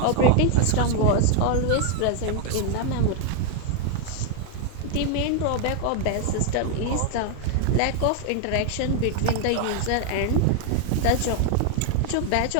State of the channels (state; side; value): different; both; correlation 0.00